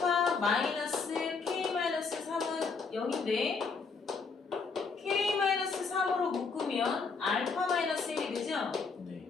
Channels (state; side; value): quieter; right; 4.8 dB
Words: 마이너스 k-3은 0인데 k-3으로 묶으면 알파 마이너스 1이 되죠? 네.